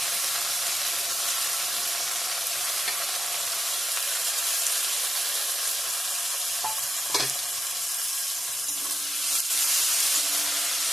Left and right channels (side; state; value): both; normal; correlation 0.88